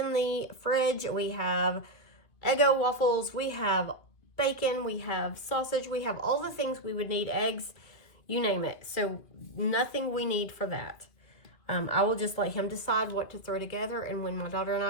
the fridge. We have Eggo waffles. We have bacon. We have sausage. We have all the things we would need, eggs, you name it. So nothing we need for that. I will just let him decide what to throw together, and when my daughter and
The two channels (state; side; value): late; right; 2.3 ms